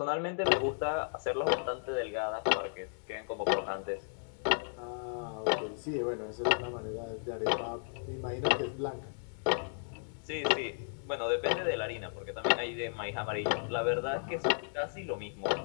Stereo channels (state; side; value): silent; right; digital silence